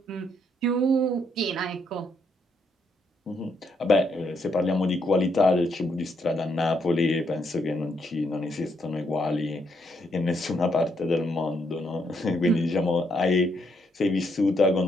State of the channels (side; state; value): both; normal; correlation 0.75